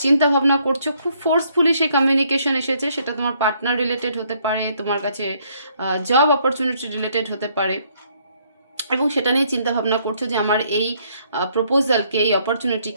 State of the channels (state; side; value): inverted; both; correlation -0.68